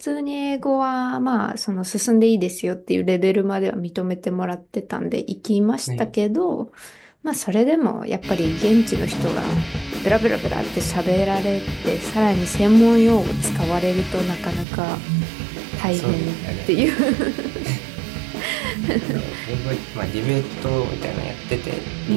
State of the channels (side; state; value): left; drops out; at 14.7 s